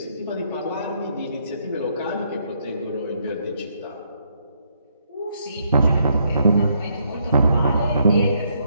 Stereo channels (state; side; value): inverted; both; correlation -0.74